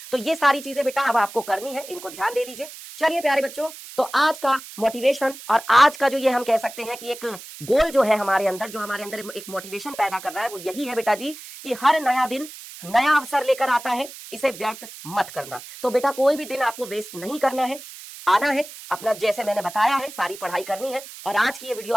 तो ये सारी चीजें बेटा अब आपको करनी है, इनको ध्यान दे लीजिए। चलिए प्यारे बच्चों, तो आज का मोटिवेशन और आज का जो ये हम कह सकते हैं कि एक गोल जो है हमारे अंदर, जो हमारे अंदर एक मोटिवेशन पैदा कर रहा है, वो यही है बेटा जी कि हर नया दिन नया अवसर लेकर आता है, इसे व्यर्थ मत करना। तो बेटा कोई भी दिन आपको वेस्ट नहीं करना है, आना है अपना, जैसे मैंने बताया है सारी पढ़ाई करनी है। और आज की ये वीडियो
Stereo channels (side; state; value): right; noise; hiss, 15 dB below the sound